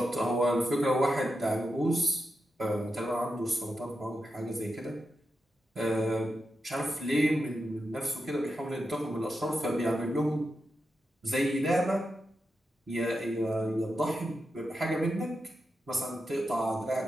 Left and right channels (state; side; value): normal; both; correlation 0.88